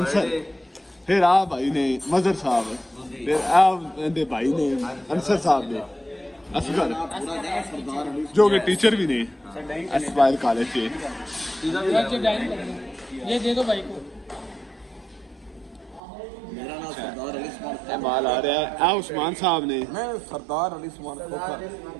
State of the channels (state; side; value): drops out; left; at 16.0 s